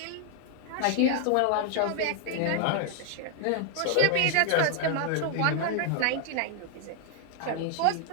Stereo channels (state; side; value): different; both; correlation 0.00